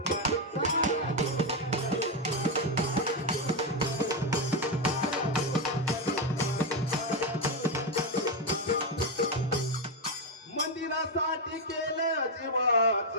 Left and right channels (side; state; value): both; normal; correlation 0.06